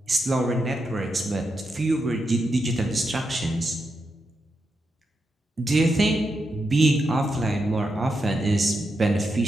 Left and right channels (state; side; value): normal; both; correlation 0.85